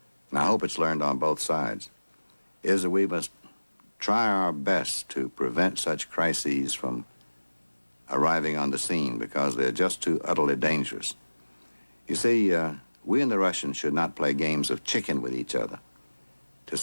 and I hope it's learned on both sides, is that we must try our best to prevent such crises from arriving on the scene because they're just too utterly dangerous. You see, we and the Russians should not play games of chicken with each other to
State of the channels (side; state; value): both; inverted; correlation -1.00